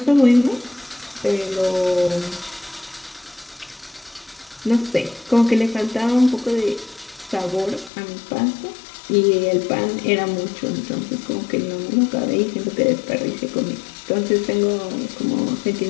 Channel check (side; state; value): right; drops out; at 7.9 s